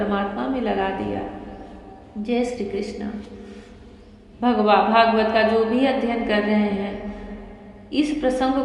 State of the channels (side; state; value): both; identical; correlation 1.00